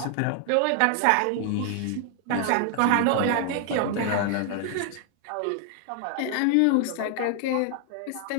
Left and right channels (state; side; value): different; both; correlation 0.00